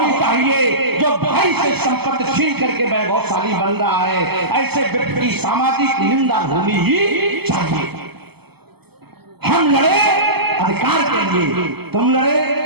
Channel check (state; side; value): late; left; 0.97 ms